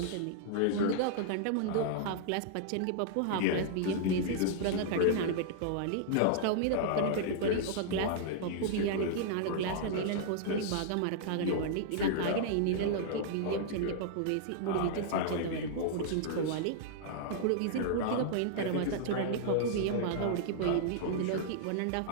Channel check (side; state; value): both; different; correlation -0.01